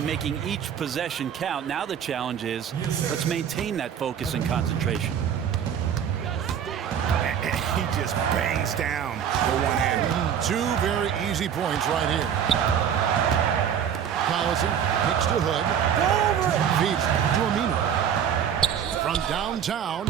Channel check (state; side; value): quieter; left; 8.6 dB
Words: making each possession count. Now the challenge is, let's maintain that focus and concentration. And he just bangs down the one hand. 2 very easy points right here. Collison kicks to Hood. Feeds to Amino. From downtown.